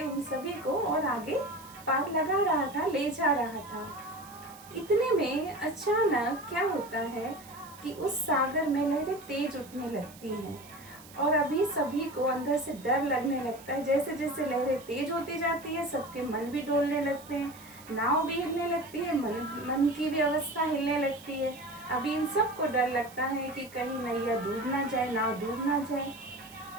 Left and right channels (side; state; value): right; noise; hiss, 20 dB below the sound